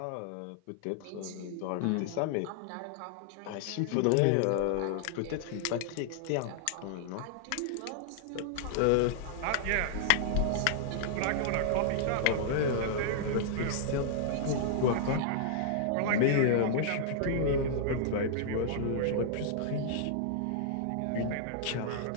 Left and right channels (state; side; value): different; both; correlation -0.01